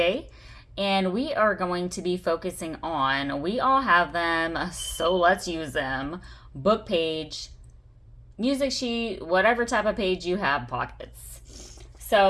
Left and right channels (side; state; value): both; identical; correlation 1.00